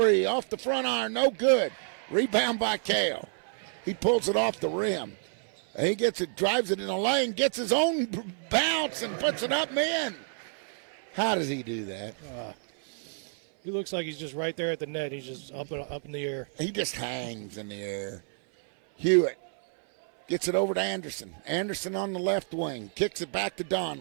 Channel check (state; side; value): silent; left; 58 dB below the other